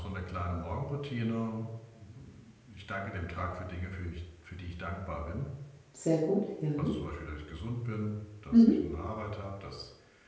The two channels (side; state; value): both; identical; correlation 1.00